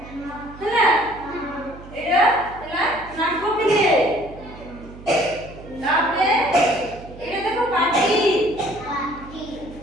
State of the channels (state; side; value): noise; right; hum, 17 dB below the sound